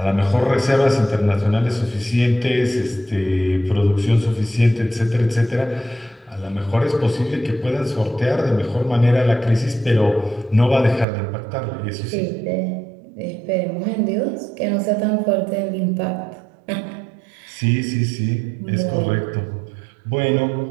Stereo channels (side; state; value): left; drops out; at 11.1 s